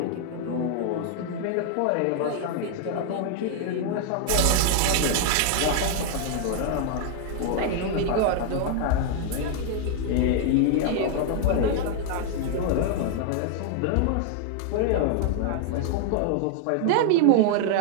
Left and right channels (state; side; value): different; both; correlation 0.00